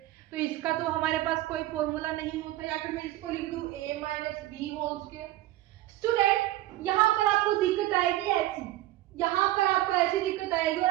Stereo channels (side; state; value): left; quieter; 15.7 dB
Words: तो इसका तो हमारे पास कोई फॉर्मूला नहीं होता, या फिर मैं इसको लिख दूं a minus b whole square. Student यहाँ पर आपको दिक्कत आएगी ऐसी, यहाँ पर आपको ऐसी दिक्कत आएगी और